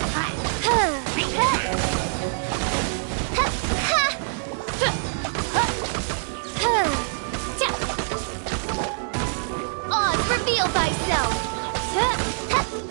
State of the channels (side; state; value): left; silent; digital silence